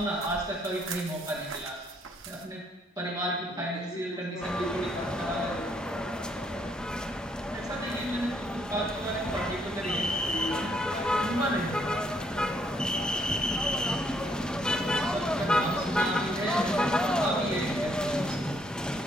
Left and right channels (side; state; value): both; normal; correlation 0.70